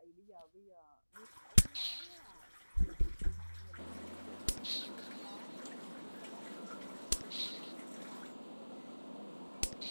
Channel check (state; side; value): inverted; both; correlation -1.00